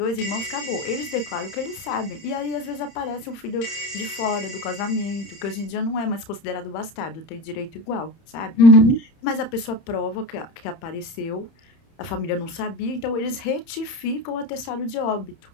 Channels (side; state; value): right; late; 30 ms